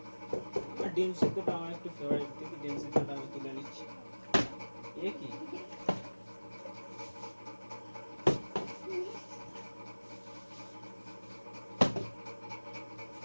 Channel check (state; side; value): inverted; both; correlation -1.00